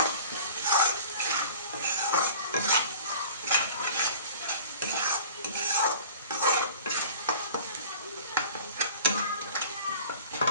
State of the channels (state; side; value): inverted; both; correlation -0.43